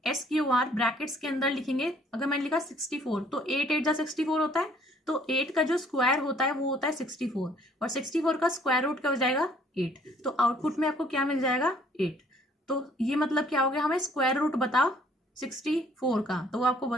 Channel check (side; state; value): both; normal; correlation 0.60